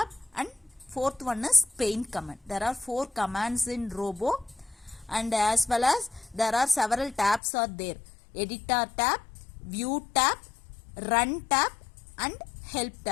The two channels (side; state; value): right; drops out; at 7.4 s